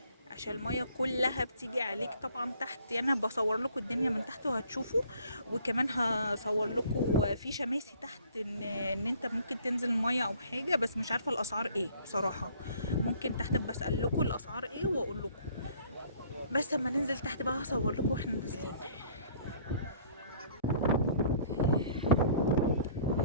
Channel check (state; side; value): inverted; both; correlation -0.57